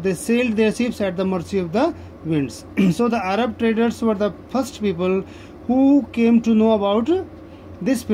sailed their ships at the mercy of the winds. So the Arab traders were the first people who came to know about this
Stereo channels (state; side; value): identical; both; correlation 1.00